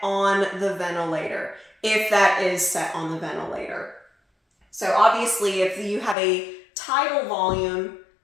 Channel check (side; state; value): right; drops out; at 6.2 s